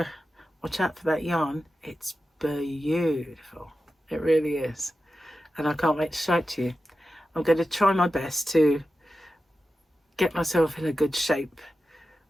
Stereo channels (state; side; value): normal; both; correlation 0.92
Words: watch out for that yarn. It's beautiful. It really is. And I can't wait to show it to you. I'm going to try my best to get myself in a good shape.